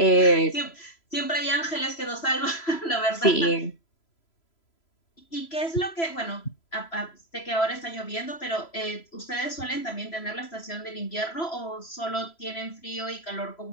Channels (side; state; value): right; late; 3.0 ms